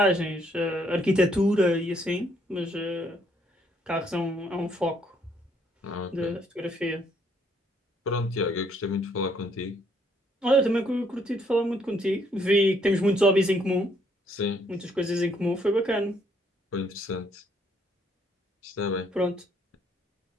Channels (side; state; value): both; normal; correlation 0.69